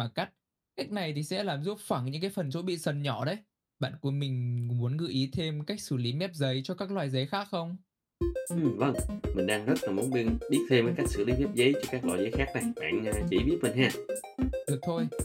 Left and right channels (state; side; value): identical; both; correlation 1.00